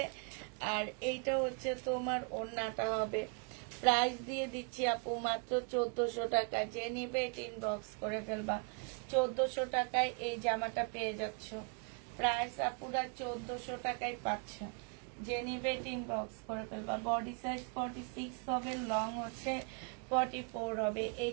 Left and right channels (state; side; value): quieter; left; 38.7 dB